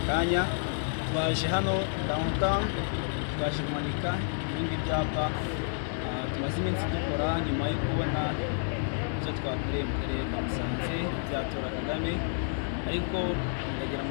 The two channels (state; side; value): silent; right; digital silence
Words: kanya twaje hano downtown twaje kumanika ibindi byapa tumaze iminsi dukora nyuma yo kubona ibyo twakoreye mu karere ka Musanze byatora Kagame ariko ndagira